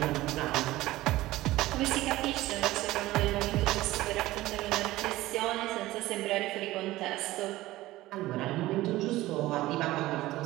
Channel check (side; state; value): left; quieter; 17.2 dB